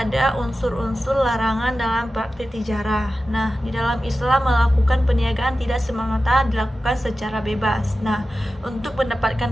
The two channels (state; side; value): normal; both; correlation 0.93